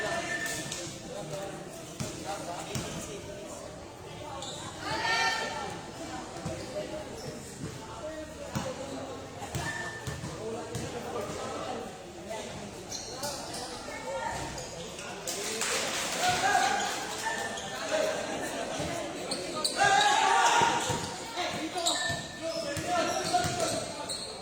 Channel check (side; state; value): both; identical; correlation 1.00